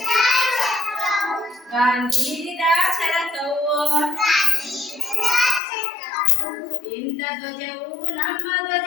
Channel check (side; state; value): right; drops out; at 5.6 s